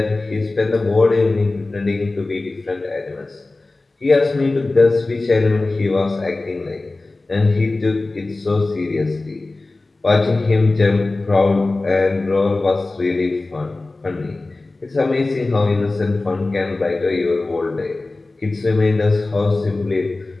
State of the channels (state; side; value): quieter; right; 3.2 dB